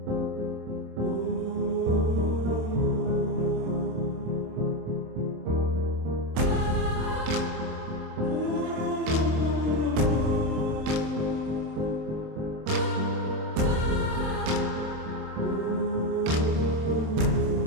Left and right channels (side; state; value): left; late; 27 ms